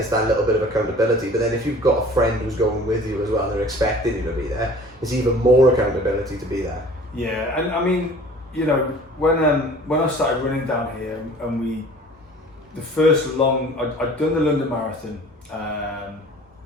that little bit of accountability. But then if you've got a friend who's going with you as well, and they're expecting you to be there, it's even more accountability to be there. Yeah, and I mean, you know, when I started running down here, and the first long, I'd done the London Marathon.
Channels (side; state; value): both; normal; correlation 0.47